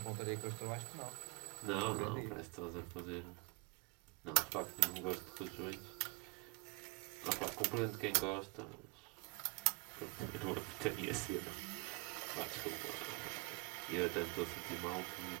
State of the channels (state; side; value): quieter; left; 28.0 dB